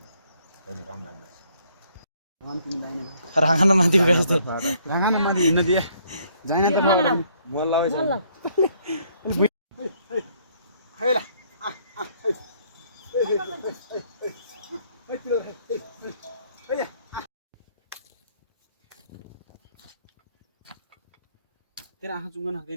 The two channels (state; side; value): inverted; both; correlation -0.66